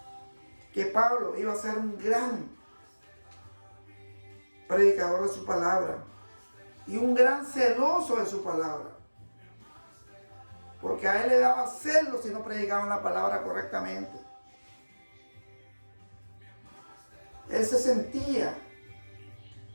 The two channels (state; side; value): inverted; both; correlation -1.00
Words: que Pablo iba a ser un gran predicador de su palabra y un gran celoso de su palabra. Porque a él le daba celo si no predicaban la palabra correctamente. Él se sentía